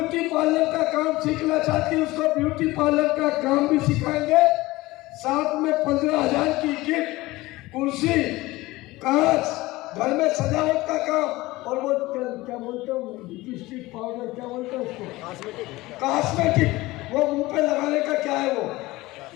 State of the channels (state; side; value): quieter; right; 19.6 dB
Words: पार्लर का काम सीखना चाहती है उसको ब्यूटी पार्लर का काम भी सिखाएंगे। साथ में 15,000 की किट, कुर्सी, कांच, घर में सजावट का काम और वो क्या बोलते हो लिपस्टिक पाउडर क्या बोलते हैं उसको, कॉस्मेटिक, वो मुंह पे लगाने का क्या है वो।